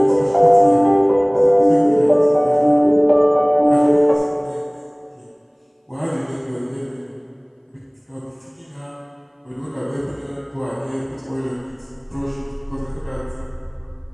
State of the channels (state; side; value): identical; both; correlation 1.00